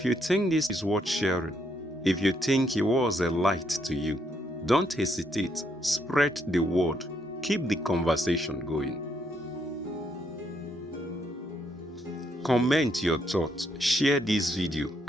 you think this is worth sharing, if you think he was a light to you, don't hesitate. Spread the word. Keep the conversation going. Comment your thoughts, share this video,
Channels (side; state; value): both; normal; correlation 0.75